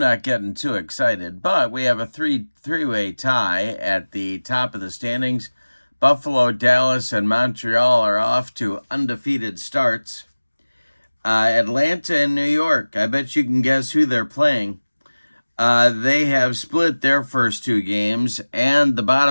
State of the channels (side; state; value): both; inverted; correlation -1.00